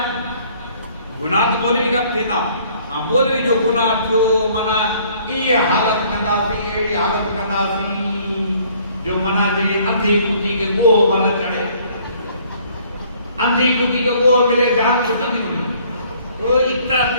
गुनाह तो बोली का थींदा हां बोल भी जो गुनाह जो माना ये हालत कंदा सी ये हालत कंदा सी जो मना जे अंधी कुटी के गो वाला चढ़े अंधी कुटी को गो मिले जान तो नहीं मिले तो इतना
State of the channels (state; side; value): inverted; both; correlation -0.59